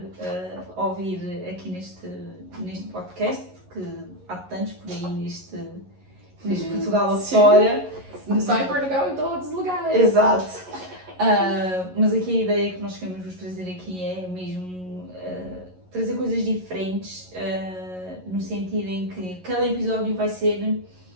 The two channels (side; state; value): left; late; 11 ms